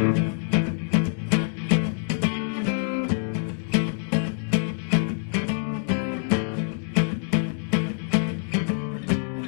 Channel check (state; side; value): silent; right; digital silence